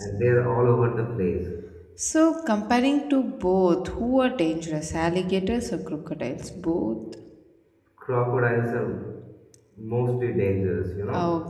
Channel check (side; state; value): both; identical; correlation 1.00